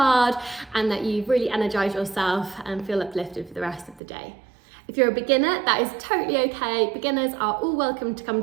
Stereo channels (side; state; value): left; drops out; at 4.0 s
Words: and that you've really energized yourself and feel uplifted for the rest of the day. If you're a beginner, that is totally okay. Beginners are all welcome to come